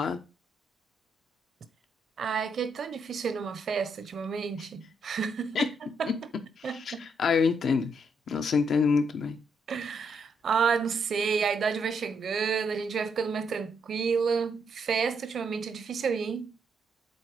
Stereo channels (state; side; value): normal; both; correlation 0.76